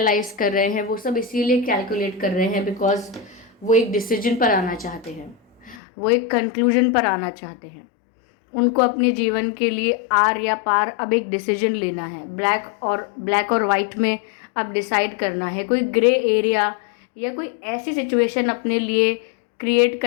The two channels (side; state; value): right; drops out; at 5.8 s